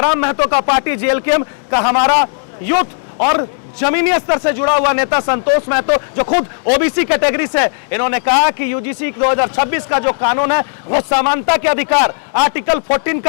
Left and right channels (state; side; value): silent; right; digital silence